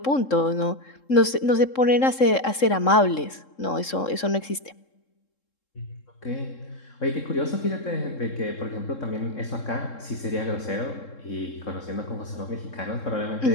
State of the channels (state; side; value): late; right; 3.7 ms